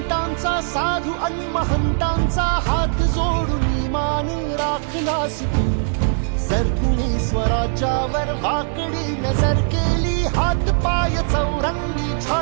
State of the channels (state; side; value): silent; left; 58 dB below the other